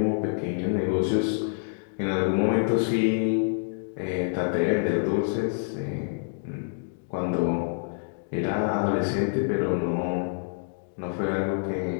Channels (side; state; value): right; silent; digital silence